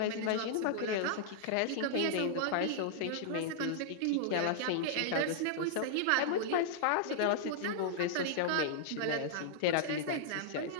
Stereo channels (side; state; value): both; different; correlation -0.01